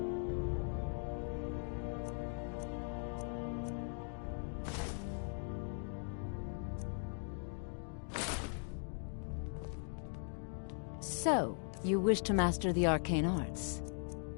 So, you wish to master the arcane arts?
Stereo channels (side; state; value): right; silent; 51 dB below the other